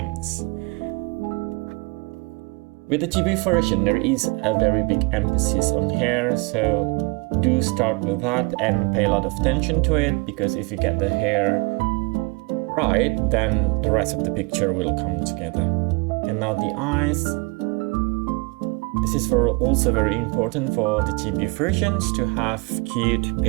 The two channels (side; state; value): left; quieter; 28.7 dB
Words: With the chibi version, there is a very big emphasis on hair, so do start with that and pay a lot of attention to it, because if you get the hair right, then the rest of the picture will come together. And now the eyes. This is also very important for the chibi versions to have cute